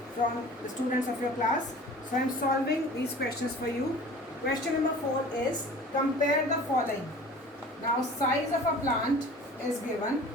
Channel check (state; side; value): normal; both; correlation 0.43